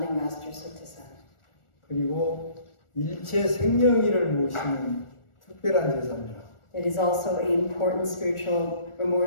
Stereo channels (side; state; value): right; late; 1.4 ms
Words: master Sotaesan. 그리고 일체 생명일을 모시는 특별한 제사입니다. It is also an important spiritual